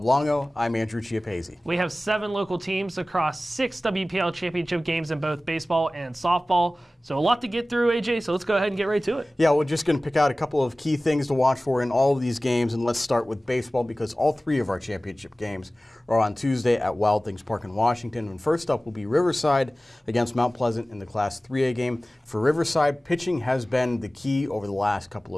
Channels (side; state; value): both; normal; correlation 0.97